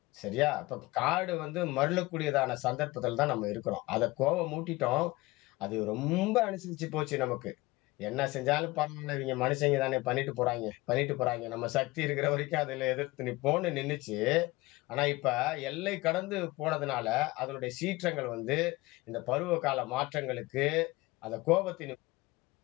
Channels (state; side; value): quieter; right; 20.9 dB